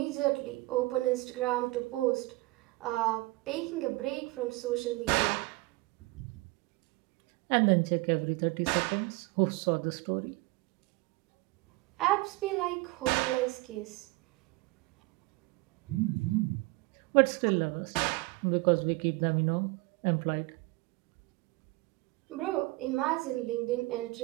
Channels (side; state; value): left; quieter; 22.6 dB